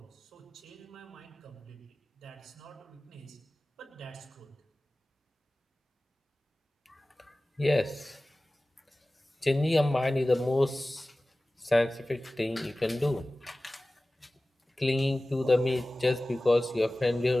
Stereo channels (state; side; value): normal; both; correlation 0.97